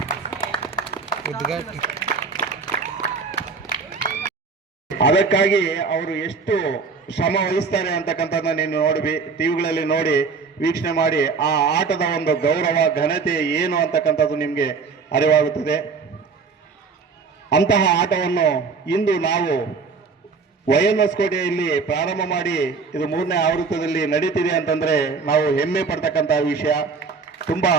ಅದಕ್ಕಾಗಿ ಅವರು ಎಷ್ಟು ಶ್ರಮ ವಹಿಸ್ತಾರೆ ಅಂತಕ್ಕಂಥದ್ದನ್ನ ನೀನು ನೋಡಿ ಟಿವಿಗಳಲ್ಲಿ ನೋಡಿ ವೀಕ್ಷಣೆ ಮಾಡಿ ಆ ಆಟದ ಒಂದು ಗೌರವ ಘನತೆ ಏನು ಅಂತಕ್ಕಂಥದ್ದು ನಿಮಗೆ ಅರಿವಾಗುತ್ತದೆ. ಅಂತಹ ಆಟವನ್ನು ಇಂದು ನಾವು YNS ಕೋಟೆಯಲ್ಲಿ ಪ್ರಾರಂಭ ಮಾಡಿ ಇದು 3ನೇ ಆವೃತ್ತದಲ್ಲಿ ನಡೀತಿದೆ ಅಂತಂದ್ರೆ ನಾವು ಹೆಮ್ಮೆ ಪಡ್ತಕ್ಕಂತಹ ವಿಷಯ. ತುಂಬಾ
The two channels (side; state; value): left; quieter; 4.9 dB